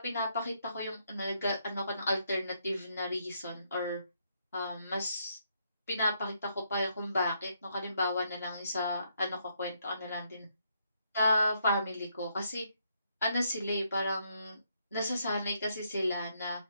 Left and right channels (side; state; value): both; inverted; correlation -0.75